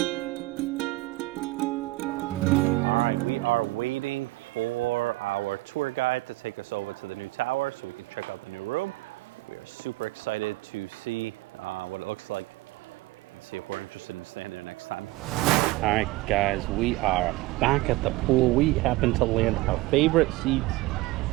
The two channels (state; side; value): quieter; left; 20.0 dB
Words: We are waiting for our tour guide to take us over to the new tower so we can check out the new room. We are super excited to see what it looks like and see if we're interested in staying there next time. All right, guys, we are back at the pool. We happen to land our favorite seats,